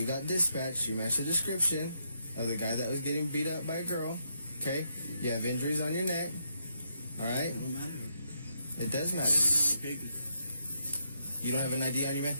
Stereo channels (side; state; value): both; inverted; correlation -0.78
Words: got dispatched. You matched the description of the guy that was getting beat up by a girl, okay? You have injuries on your neck, all right? It don't matter. It does matter. Okay. You don't have an ID on you, man?